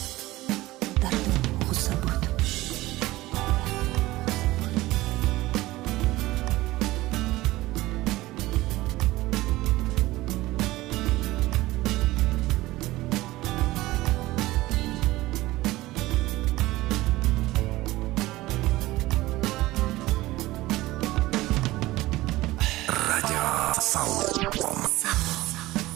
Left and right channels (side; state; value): left; quieter; 18.1 dB